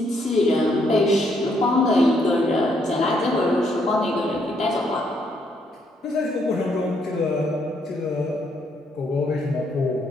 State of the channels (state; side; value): normal; both; correlation 0.73